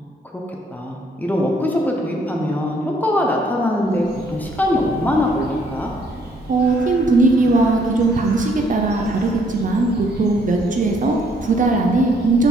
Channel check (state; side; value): normal; both; correlation 0.66